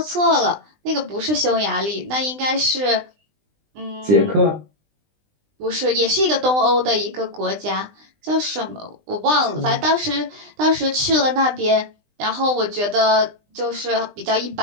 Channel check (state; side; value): late; left; 20 ms